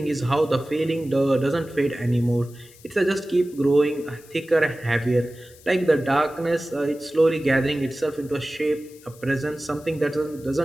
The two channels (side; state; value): left; noise; hiss, 24 dB below the sound